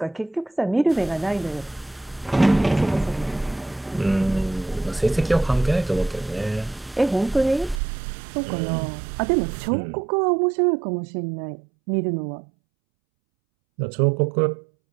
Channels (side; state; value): left; drops out; at 7.8 s